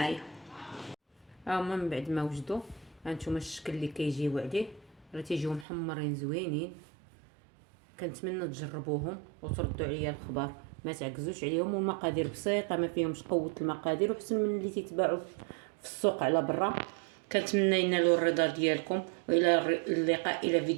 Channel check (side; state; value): left; drops out; at 5.7 s